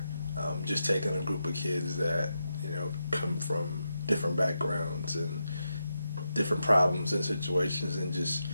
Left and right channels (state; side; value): inverted; both; correlation -0.86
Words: Just taking a group of kids that come from different backgrounds and different problems and situations, and just